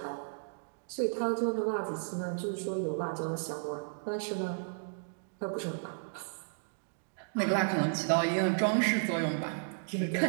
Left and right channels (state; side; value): silent; left; digital silence